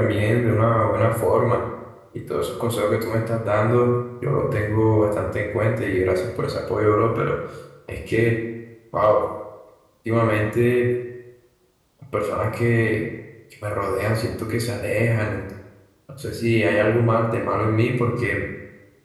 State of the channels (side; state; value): both; identical; correlation 1.00